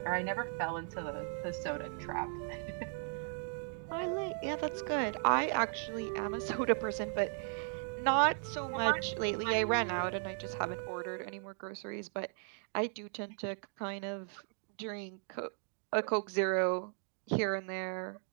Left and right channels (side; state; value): left; silent; 53 dB below the other